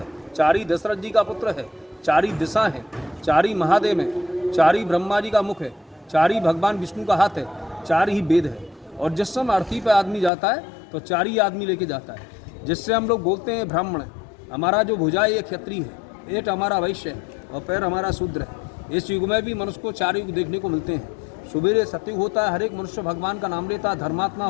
चार ही दशरथ जी का पुत्र है, चार ही दिशा है, चार ही महादेव है, चार ही ब्रह्मा जी का मुख है, चार ही भगवान विष्णु का हाथ है, चार ही वेद है। और जिस समय अर्थी पे आदमी जाता है तो चार ही आदमी लेके जाता है, जिससे हम लोग बोलते हैं ब्राह्मण। हमारा जो भुजा है ये क्षत्रिय है, पेट हमारा वैश्य है और पैर हमारा शूद्र है। इस युग में भी मनुष्य को चार युग देखने को मिलते हैं। सुबेरे सतयुग होता है, हर एक मनुष्य भगवान का नाम लेता है, धर्मात्मा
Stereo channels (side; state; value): right; drops out; at 10.3 s